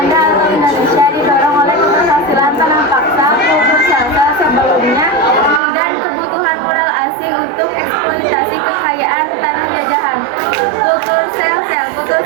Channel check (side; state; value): left; drops out; at 5.6 s